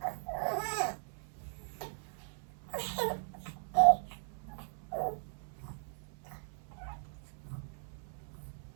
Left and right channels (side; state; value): left; silent; 52 dB below the other